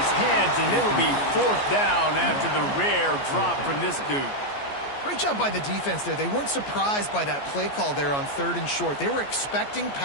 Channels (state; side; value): late; right; 14 ms